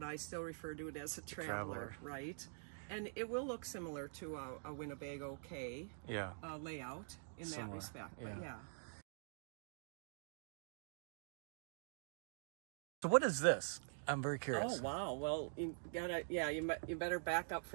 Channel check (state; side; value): silent; left; digital silence